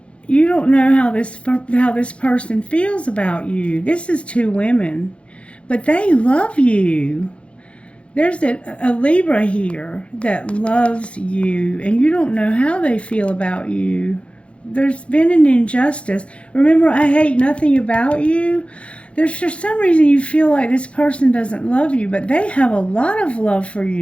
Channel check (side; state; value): right; late; 0.060 ms